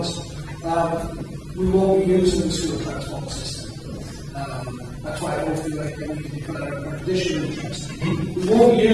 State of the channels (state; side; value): identical; both; correlation 1.00